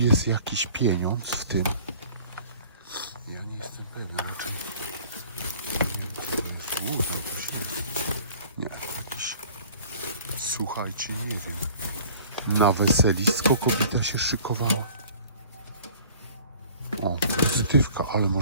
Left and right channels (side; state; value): both; inverted; correlation -0.49